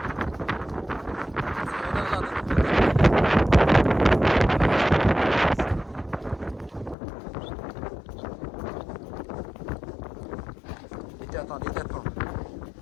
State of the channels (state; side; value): drops out; right; at 7.0 s